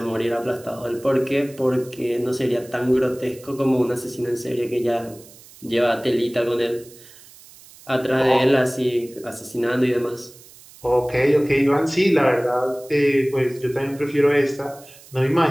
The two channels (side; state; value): right; noise; hiss, 22 dB below the sound